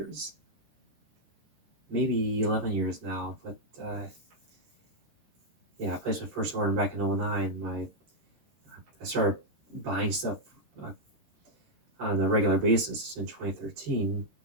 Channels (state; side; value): late; left; 13 ms